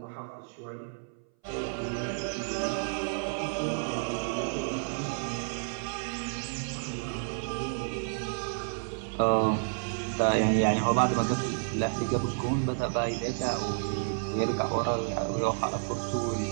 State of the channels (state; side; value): silent; left; 57 dB below the other